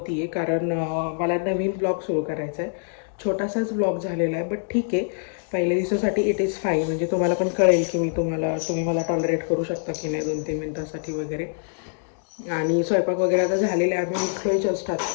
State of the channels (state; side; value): silent; right; digital silence